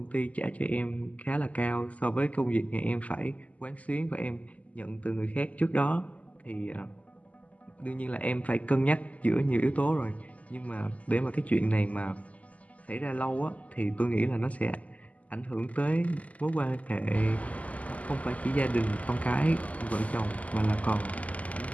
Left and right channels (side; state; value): right; late; 0.072 ms